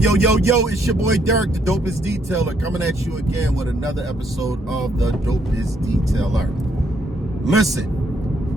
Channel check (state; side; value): normal; both; correlation 0.72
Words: your boy Derek, the Dopest Detailer, coming at you again with another episode of the Dopest Detailer.